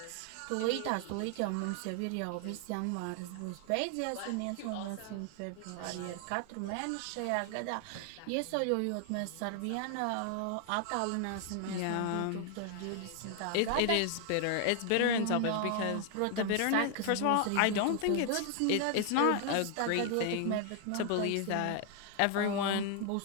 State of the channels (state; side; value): different; both; correlation 0.00